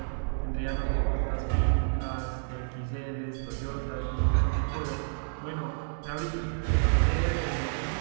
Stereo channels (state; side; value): silent; left; digital silence